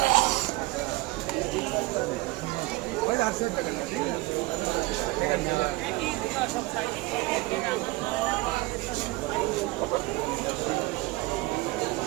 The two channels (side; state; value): left; quieter; 20.6 dB